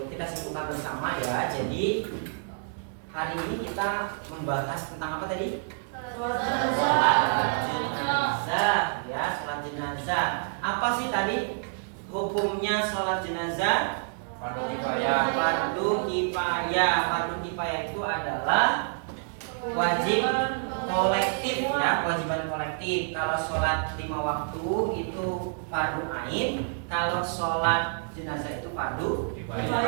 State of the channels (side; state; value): left; silent; digital silence